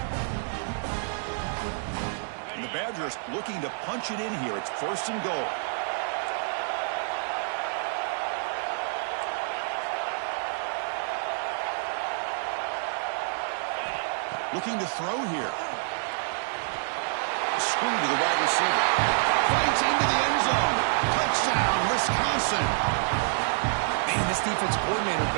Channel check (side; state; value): left; silent; digital silence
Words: And the Badgers looking to punch it in here. It's 1st and goal. Looking to throw here. Screen to the wide receiver. Fights into the end zone. Touchdown, Wisconsin. Man, this defense coordinator